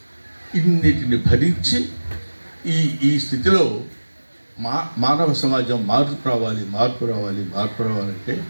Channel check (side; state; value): both; inverted; correlation -1.00